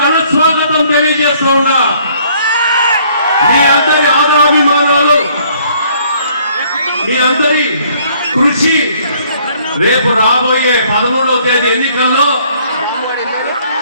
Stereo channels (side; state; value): both; inverted; correlation -0.62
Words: స్వాగతం తెలియజేస్తూ ఉన్నా. మీ అందరి ఆదరాభిమానాలు, మీ అందరి కృషి రేపు రాబోయే 13వ తేదీ ఎన్నికల్లో